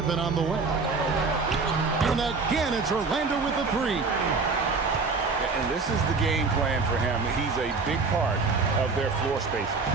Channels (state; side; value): quieter; left; 4.3 dB